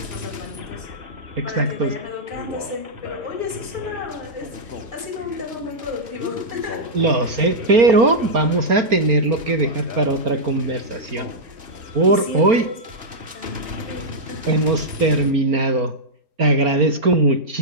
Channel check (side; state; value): left; late; 4.4 ms